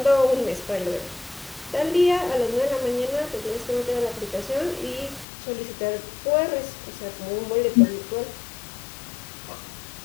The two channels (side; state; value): right; drops out; at 5.2 s